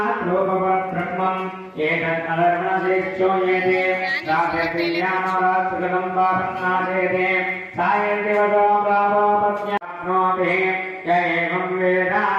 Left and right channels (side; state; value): both; identical; correlation 1.00